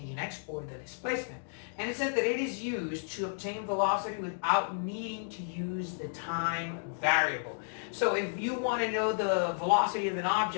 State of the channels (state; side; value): silent; right; digital silence